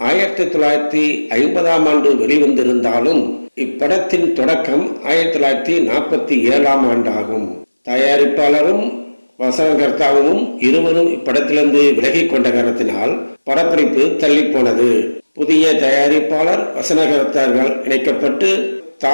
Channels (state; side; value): inverted; both; correlation -1.00